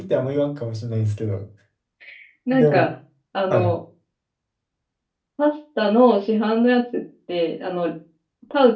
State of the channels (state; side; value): identical; both; correlation 1.00